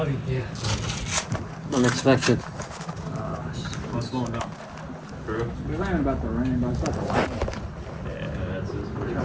Unexpected. We ran about the rain, but it's about the lightning. Try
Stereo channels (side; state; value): both; identical; correlation 1.00